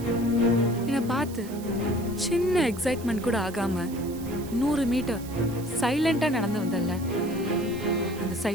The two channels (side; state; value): right; noise; hiss, 17 dB below the sound